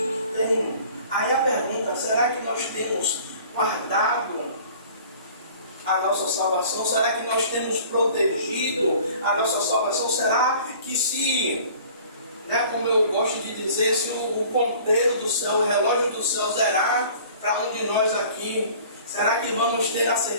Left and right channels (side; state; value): both; inverted; correlation -0.48